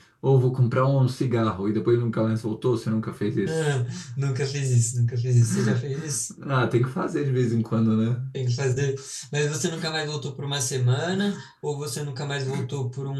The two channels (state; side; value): identical; both; correlation 1.00